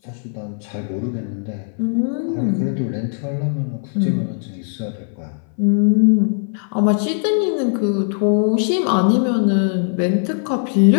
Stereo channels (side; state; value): right; silent; 59 dB below the other